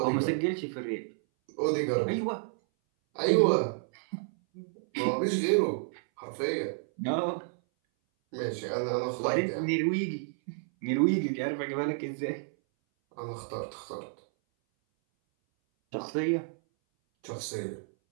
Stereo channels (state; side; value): silent; left; 57 dB below the other